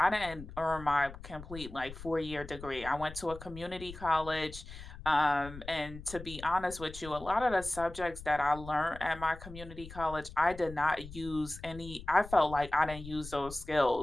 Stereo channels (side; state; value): left; noise; rumble, 14 dB below the sound